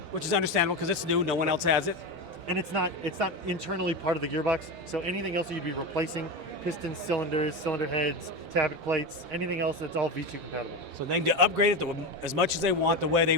Which is understandable because it's new. No one else has it. and it's not internally part of the gearbox. So anything else that you'd be replacing, pistons, cylinders, cylinder heads, tabbet plates, anything else, that's all V2 compatible. So they can upgrade it as much as they want, the way they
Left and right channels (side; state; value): both; normal; correlation 0.19